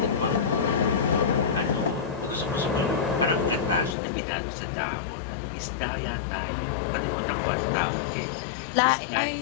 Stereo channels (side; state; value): right; drops out; at 4.0 s